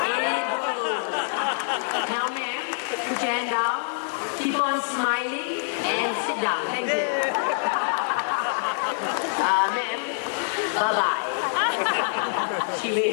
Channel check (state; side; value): silent; right; digital silence